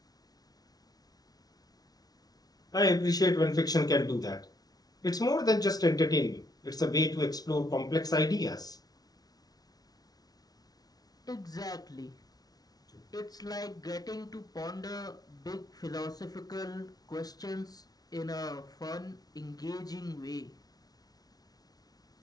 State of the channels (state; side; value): late; right; 0.19 ms